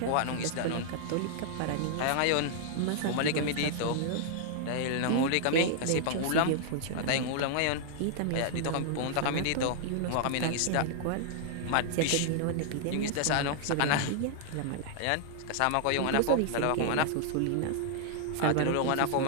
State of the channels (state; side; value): different; both; correlation -0.01